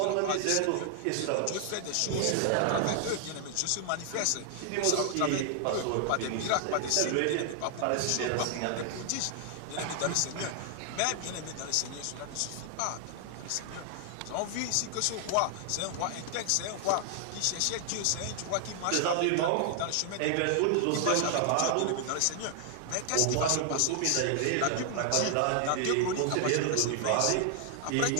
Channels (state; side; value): different; both; correlation 0.00